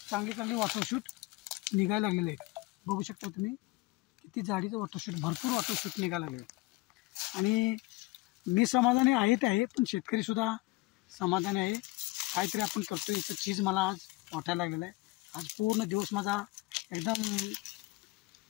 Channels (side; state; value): right; quieter; 21.2 dB